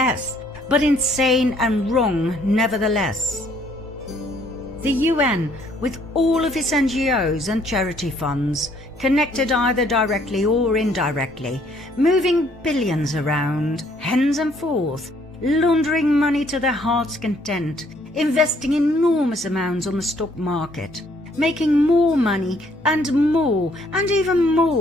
but insane and wrong nevertheless. The UN, with all of its NGOs and charity funds, connected either directly or indirectly, moving billions around, hens and forth, laundering money to their heart's content, investing enormous amounts on the stock market, making more money and even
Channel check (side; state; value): both; normal; correlation 0.65